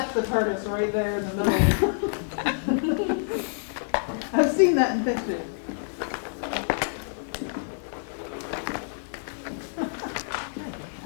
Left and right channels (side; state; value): right; silent; digital silence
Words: the TARDIS right there in the middle. I've seen that in pictures.